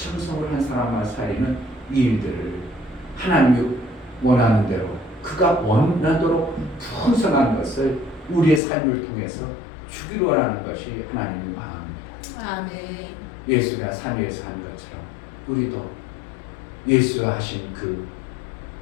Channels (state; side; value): drops out; right; at 8.6 s